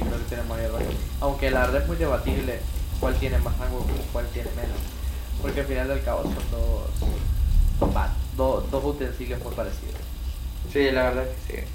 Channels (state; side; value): identical; both; correlation 1.00